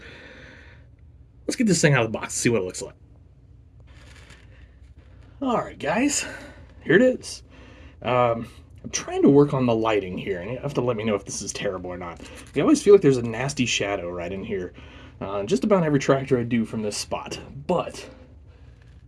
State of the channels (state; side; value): identical; both; correlation 1.00